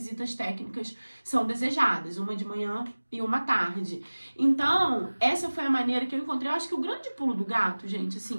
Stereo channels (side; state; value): both; inverted; correlation -1.00